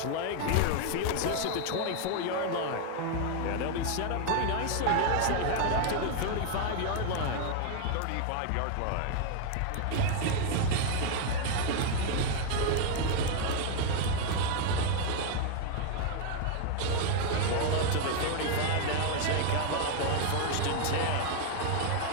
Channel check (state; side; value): different; both; correlation 0.00